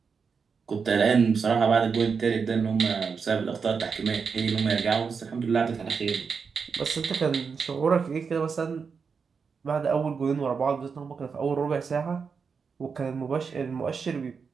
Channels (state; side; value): quieter; left; 5.6 dB